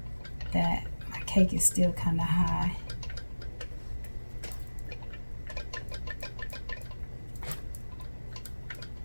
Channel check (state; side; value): inverted; both; correlation -1.00